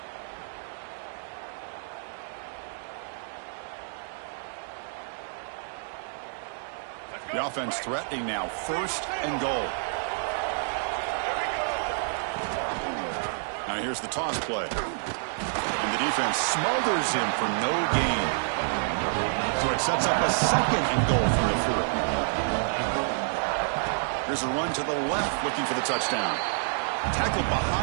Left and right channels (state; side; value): silent; left; digital silence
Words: The offense threatening now. First and goal. Now here's the toss play. And the defense smothers him for no gain. So it sets up a second and goal from the 4. Here's a run to the left looking for the touchdown. Tackled